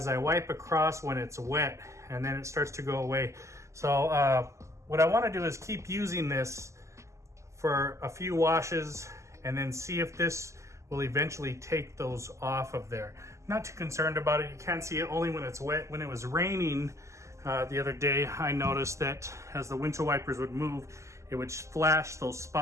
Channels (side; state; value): left; late; 0.14 ms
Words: I wipe across when it's wet, and then it starts to go away. So what I want to do is keep using this for a few washes and then see if this will eventually take those off of there. I'm not too concerned about it. You can't see it only when it's wet. When it was raining the other day, I noticed that as the windshield wipers would move, it would flash those